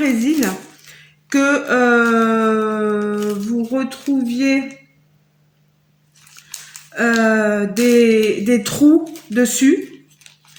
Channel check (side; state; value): both; identical; correlation 1.00